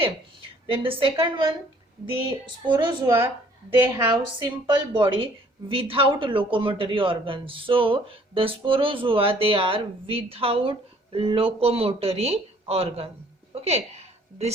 then the second one, the sporozoa, they have simple body without locomotory organs. So the sporozoa, they are without locomotory organ. Okay,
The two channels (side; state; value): both; normal; correlation 0.58